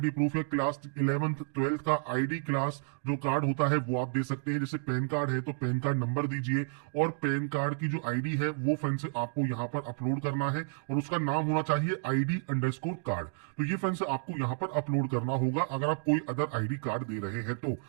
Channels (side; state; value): left; silent; 57 dB below the other